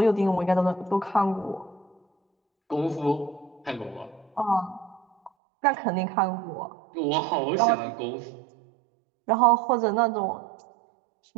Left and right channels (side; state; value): left; drops out; at 5.3 s